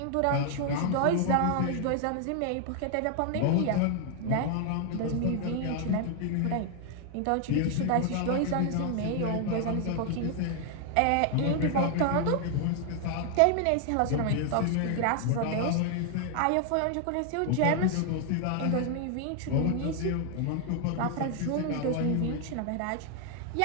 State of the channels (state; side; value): different; both; correlation 0.00